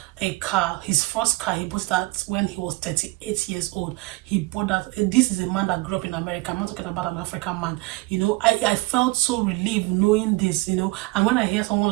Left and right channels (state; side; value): quieter; left; 22.8 dB